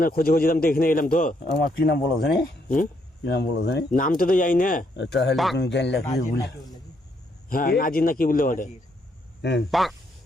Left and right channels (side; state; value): both; normal; correlation 0.74